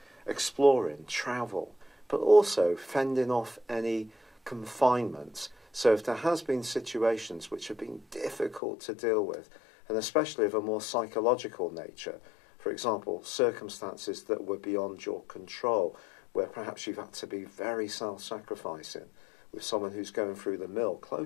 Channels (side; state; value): right; drops out; at 8.6 s